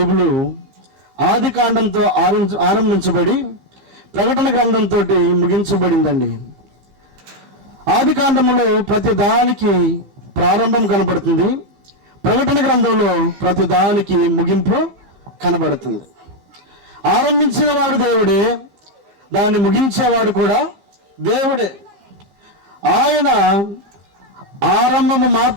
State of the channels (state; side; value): late; left; 15 ms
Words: ఆది కాండంతో ఆరంభించబడి ప్రకటన గ్రంథంతో ముగించబడిందండి. ఆది కాండములో ప్రతి దానికి ప్రారంభం కనబడుతుంది, ప్రకటన గ్రంథంలో ప్రతి దానికి ముగింపు కనబడుతుంది. ఆరంభించిన వాడు దేవుడే, దాన్ని ముగించేవాడు కూడా దేవుడే. ఆయన ఆరంభము